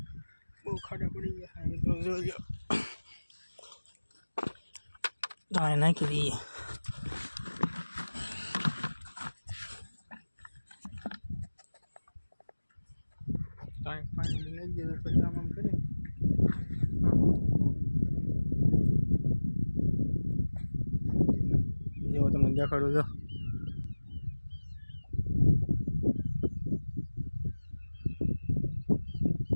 બહુ ખાડા પડી ગયા મિત્રો. જોજો દાય નાખી દઈએ. કાંઈ પાણી લઈ દીધું પછી આમ કરી જેવો તમને દેખાડું છો.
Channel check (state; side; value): inverted; both; correlation -1.00